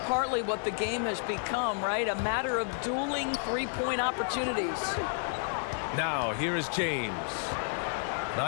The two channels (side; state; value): right; silent; 57 dB below the other